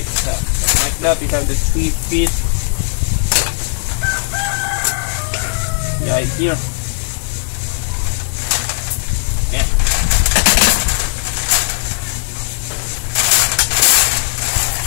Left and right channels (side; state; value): right; silent; digital silence